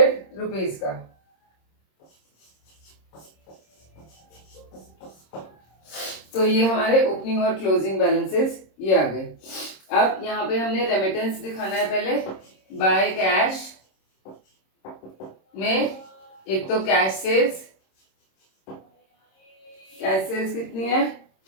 रुपीज का। तो ये हमारे ओपनिंग और क्लोजिंग बैलेंसेस ये आ गए। अब यहाँ पे हमने रेमिटेंस दिखाना है। पहले बाय कैश में एक तो कैश सेल्स कितनी है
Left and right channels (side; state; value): right; late; 26 ms